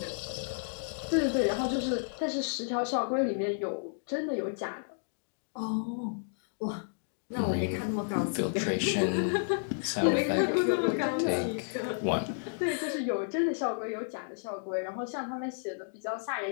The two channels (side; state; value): right; silent; digital silence